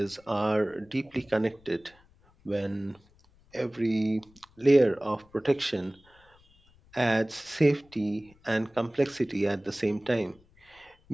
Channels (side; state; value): left; noise; rumble, 30 dB below the sound